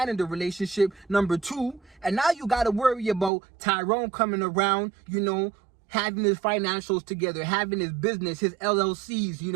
in the relationship, number two. And now you got to worry about Tyrone coming around, you know, having his financials together, having his business, his LLCs, you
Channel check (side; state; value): left; drops out; at 3.3 s